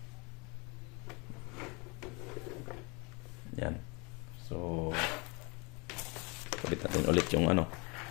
Yan. So kabit natin ulit yung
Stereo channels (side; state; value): right; quieter; 29.3 dB